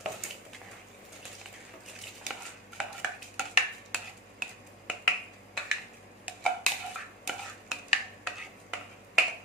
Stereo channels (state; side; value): normal; both; correlation 0.31